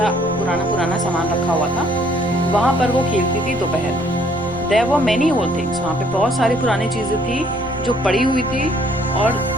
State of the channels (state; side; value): noise; left; rumble, 15 dB below the sound